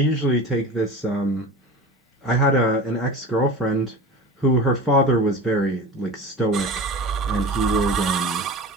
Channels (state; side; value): normal; both; correlation 0.33